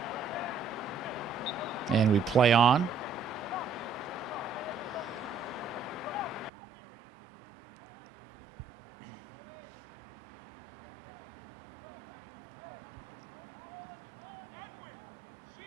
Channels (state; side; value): drops out; left; at 6.5 s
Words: And we play on.